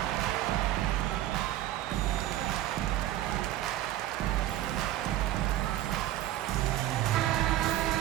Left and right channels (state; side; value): quieter; left; 13.9 dB